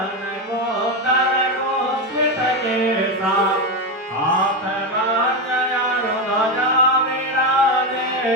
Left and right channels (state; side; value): normal; both; correlation 0.12